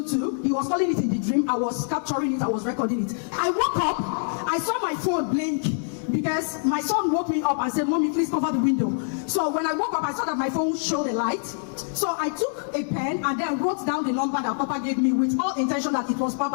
he was calling it in the dream. I was capturing it. I was recording it. I woke up. I saw my phone blink. because my son woke me up and said, "Mommy, please cover the window." So when I woke up, I saw that my phone showed a light. So I took a pen and then wrote down the number that Papa gave me with all intention that it was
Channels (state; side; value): silent; right; digital silence